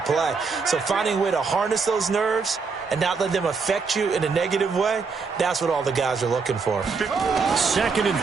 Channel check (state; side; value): quieter; left; 5.0 dB